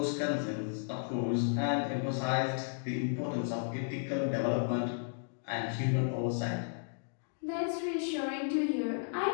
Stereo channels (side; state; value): right; silent; digital silence